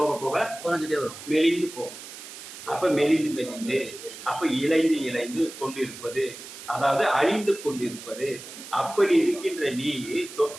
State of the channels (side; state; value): right; noise; hiss, 14 dB below the sound